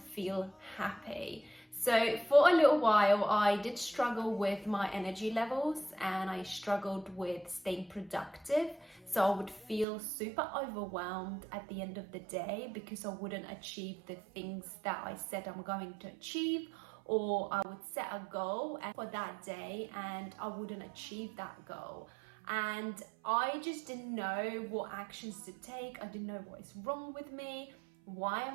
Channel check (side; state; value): left; drops out; at 9.9 s